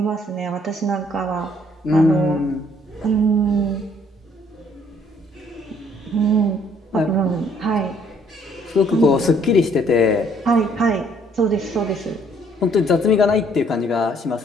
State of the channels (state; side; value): normal; both; correlation 0.63